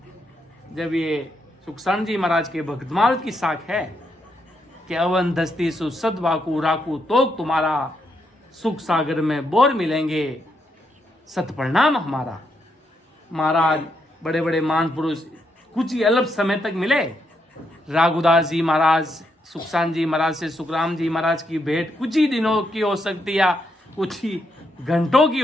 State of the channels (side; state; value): both; normal; correlation 0.79